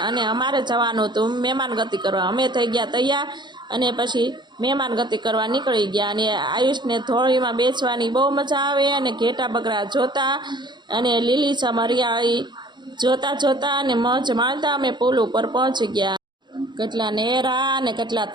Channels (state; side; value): late; left; 0.22 ms